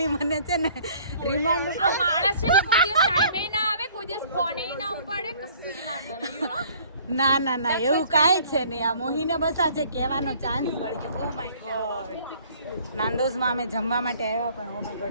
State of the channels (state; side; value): inverted; both; correlation -0.56